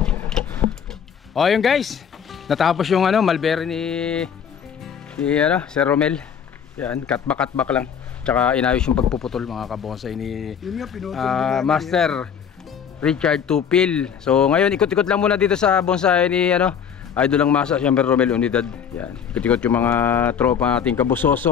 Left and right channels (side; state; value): right; quieter; 7.7 dB